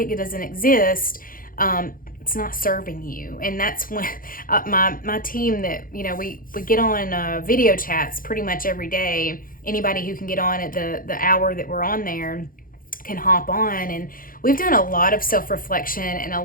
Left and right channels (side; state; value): right; late; 0.41 ms